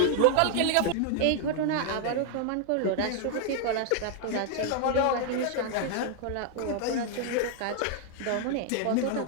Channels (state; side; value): different; both; correlation 0.00